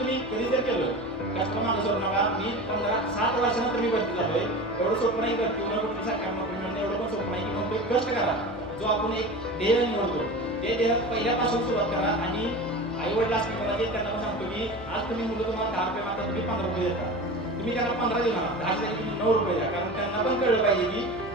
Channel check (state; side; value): noise; left; hum, 16 dB below the sound